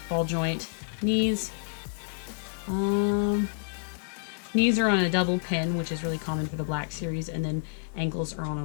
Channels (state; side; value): silent; right; digital silence